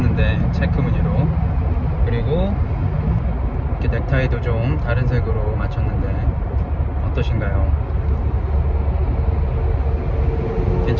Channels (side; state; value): both; identical; correlation 1.00